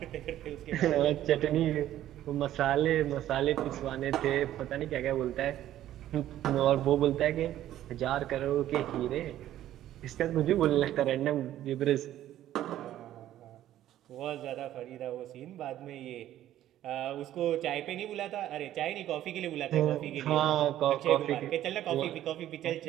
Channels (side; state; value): left; quieter; 12.8 dB